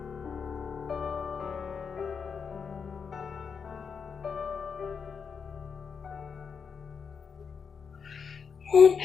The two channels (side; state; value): right; quieter; 6.1 dB